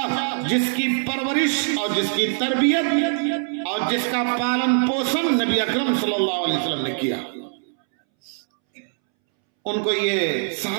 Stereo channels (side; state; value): left; silent; 64 dB below the other